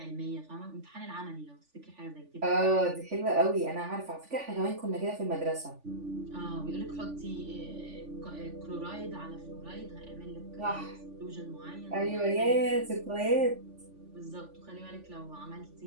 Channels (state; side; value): late; left; 3.5 ms